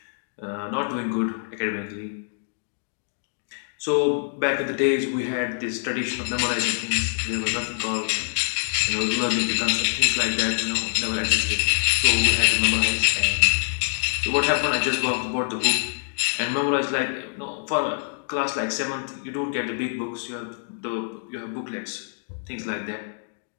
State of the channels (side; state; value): right; silent; digital silence